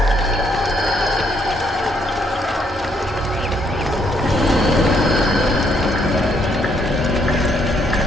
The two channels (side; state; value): both; normal; correlation 0.71